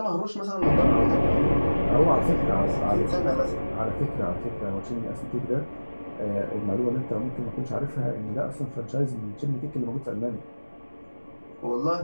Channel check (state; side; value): inverted; both; correlation -1.00